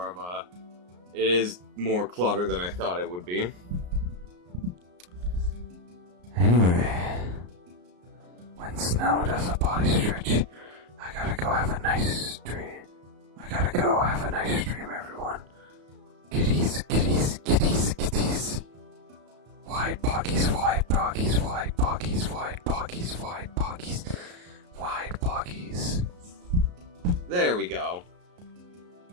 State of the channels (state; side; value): late; left; 34 ms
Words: of a... It is more clutter than I thought it would be. Anyway, when Snow does a body stretch, I gotta go have a nice stream. I gotta go have a nice stream, everyone. Kitties, kitties, kitties, kitties. Wide poggies, wide poggies, wide poggies, wide poggies, wide poggies, wide poggies. There we go.